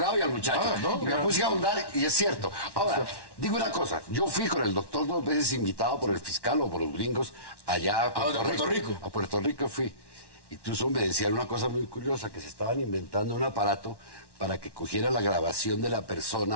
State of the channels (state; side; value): late; right; 1.1 ms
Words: y al muchacho. Y me puse a ahondar y es cierto. Ahora, digo una cosa. Yo fui con el doctor 2 veces invitado por el fiscal o por los gringos allá a Puerto Rico. A Puerto Rico fui. Incluso me decían una cosa muy curiosa, que se estaban inventando un aparato para que cogiera la grabación de la